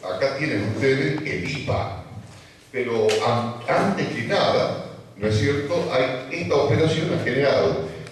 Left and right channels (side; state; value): both; identical; correlation 1.00